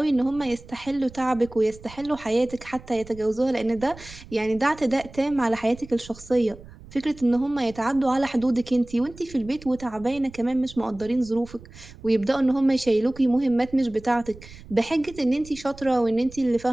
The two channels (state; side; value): noise; right; rumble, 19 dB below the sound